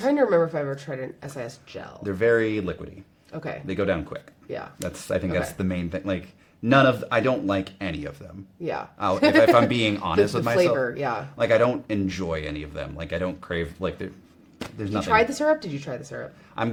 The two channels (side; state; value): both; identical; correlation 1.00